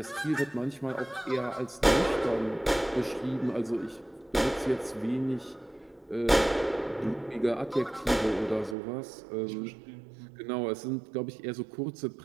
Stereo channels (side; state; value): left; drops out; at 8.8 s